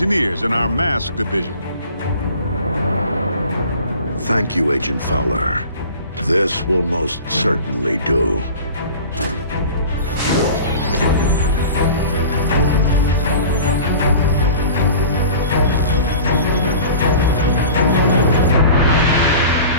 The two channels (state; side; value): inverted; both; correlation -0.40